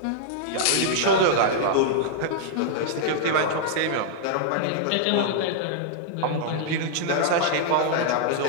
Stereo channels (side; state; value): both; different; correlation -0.01